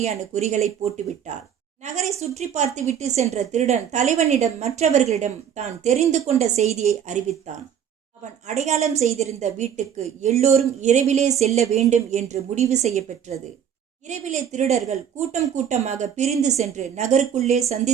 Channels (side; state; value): left; quieter; 8.7 dB